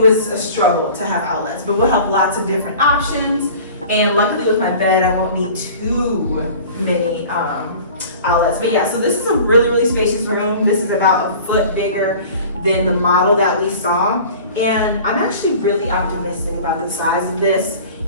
a struggle to have outlets, but we'll have lots of different options. And luckily with my bed, I won't need too many outlets. But yeah, so this is a really, really spacious room. This is about a foot bigger than the model that we saw. And I'm actually really optimistic about the size of this.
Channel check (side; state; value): both; inverted; correlation -0.43